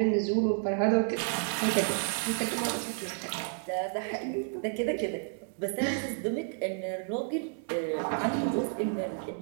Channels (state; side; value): silent; left; 57 dB below the other